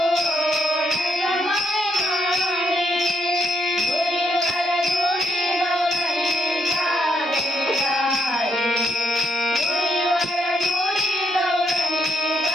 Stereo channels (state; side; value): normal; both; correlation 0.74